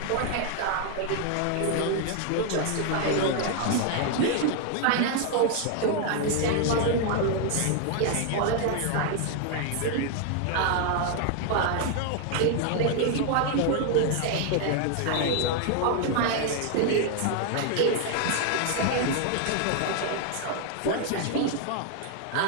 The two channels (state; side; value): different; both; correlation 0.00